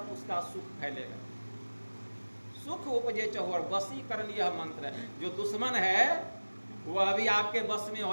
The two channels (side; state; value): both; inverted; correlation -1.00